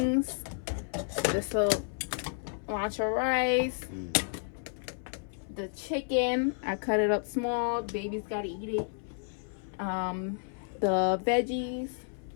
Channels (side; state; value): right; silent; 57 dB below the other